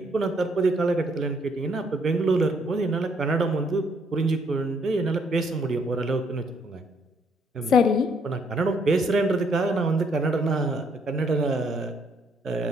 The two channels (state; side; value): normal; both; correlation 0.69